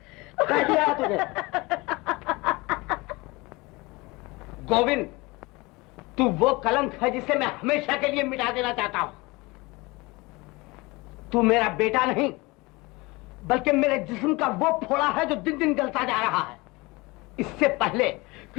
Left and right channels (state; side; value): quieter; right; 23.8 dB